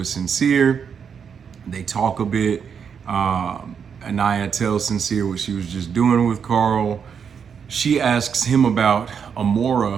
Sincere. They talk a bit. Anaya tells Sincere what she was just doing with Carl. She asks him about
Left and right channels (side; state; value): left; quieter; 7.0 dB